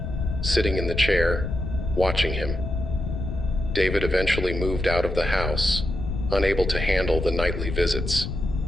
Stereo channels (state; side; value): noise; left; rumble, 4 dB below the sound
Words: sitting in the chair, watching him. David eventually moved out of the house, unable to handle the nightly visits.